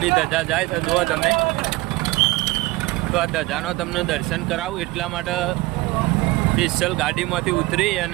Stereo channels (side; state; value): left; quieter; 20.5 dB